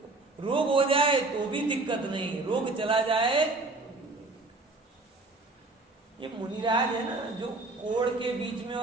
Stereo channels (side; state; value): left; quieter; 3.3 dB